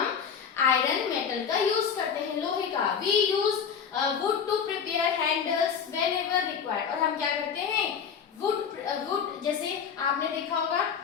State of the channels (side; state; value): right; quieter; 7.0 dB